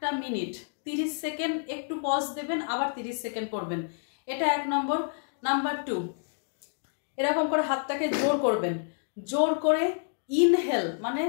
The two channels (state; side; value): silent; right; digital silence